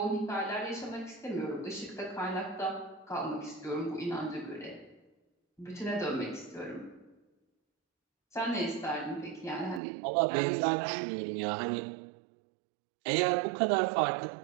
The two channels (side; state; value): left; drops out; at 9.8 s